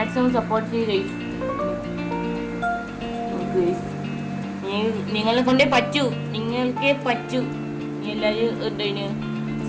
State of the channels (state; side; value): identical; both; correlation 1.00